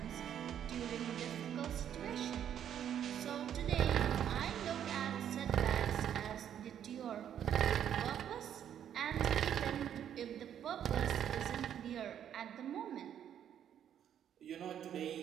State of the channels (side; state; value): left; quieter; 9.7 dB